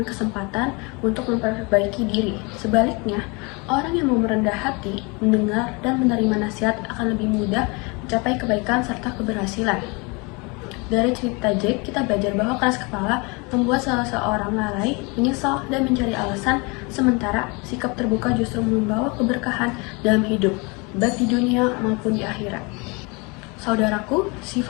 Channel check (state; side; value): quieter; right; 29.0 dB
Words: kesempatan untuk memperbaiki diri. Sebaliknya, orang yang mau merendah hati, mendengar, dan menerima nasihat akan lebih mudah mencapai kebaikan serta keberhasilan. Dari cerita Jack, kita belajar bahwa keras kepala membuat salah seorang lalai, menyesal, dan mencari alasan, sementara sikap terbuka justru membawa keberkahan dalam hidup, baik di dunia maupun di akhirat. Saudaraku,